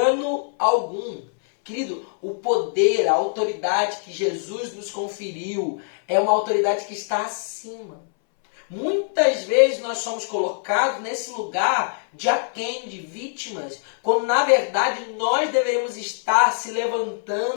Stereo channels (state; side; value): silent; right; 63 dB below the other